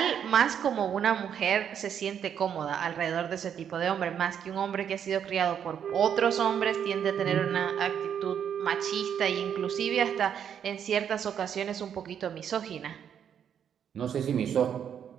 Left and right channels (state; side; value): quieter; left; 8.5 dB